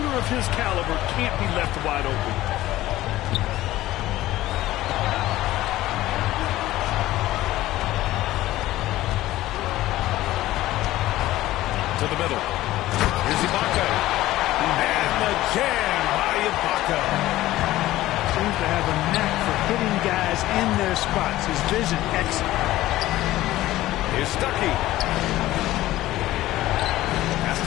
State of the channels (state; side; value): quieter; right; 15.9 dB